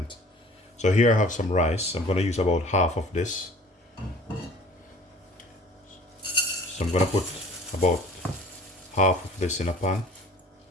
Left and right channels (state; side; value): normal; both; correlation 0.48